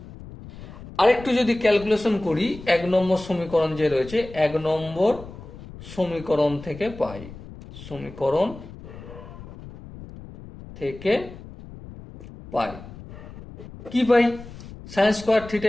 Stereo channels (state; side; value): noise; left; rumble, 15 dB below the sound